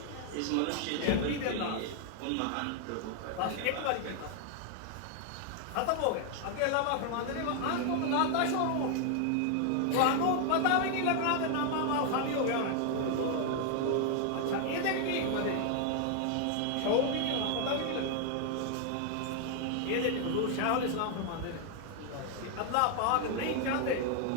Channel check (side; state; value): both; different; correlation 0.00